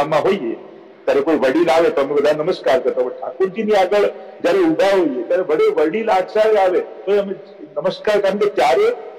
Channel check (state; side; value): identical; both; correlation 1.00